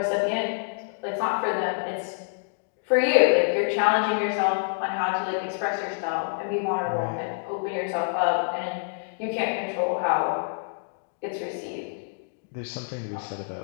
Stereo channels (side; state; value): right; silent; digital silence